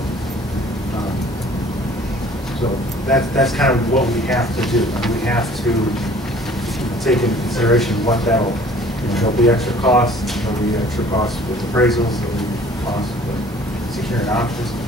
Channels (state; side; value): normal; both; correlation 0.52